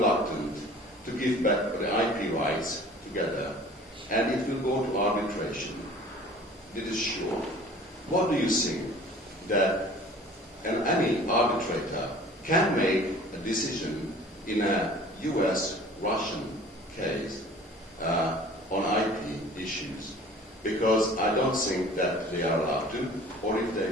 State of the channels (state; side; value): normal; both; correlation 0.47